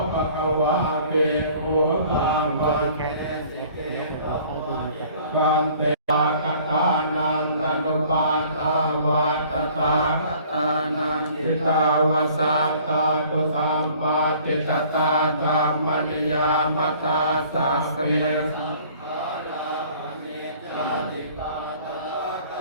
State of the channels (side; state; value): both; inverted; correlation -0.53